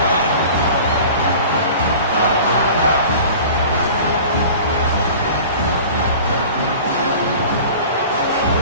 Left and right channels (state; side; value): inverted; both; correlation -0.41